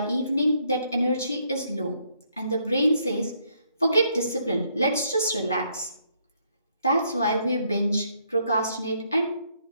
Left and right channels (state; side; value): inverted; both; correlation -0.71